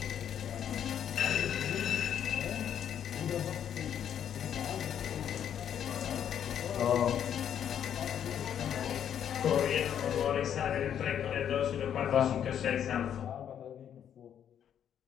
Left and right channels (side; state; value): right; quieter; 9.3 dB